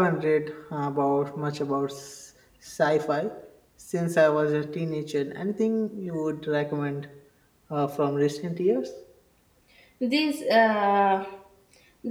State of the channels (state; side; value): identical; both; correlation 1.00